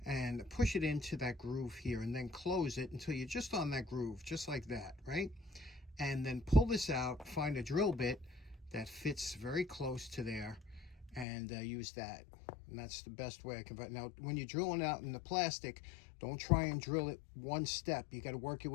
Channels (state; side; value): drops out; right; at 11.2 s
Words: and push it into that groove here and then close it until you're just on that groove, just like that, right? And then pull this out, find a drill bit that fits very close to there, and use that. And that's the best way I can. Now, when you're drilling out in the plastic, don't try and drill it one step. You got to work your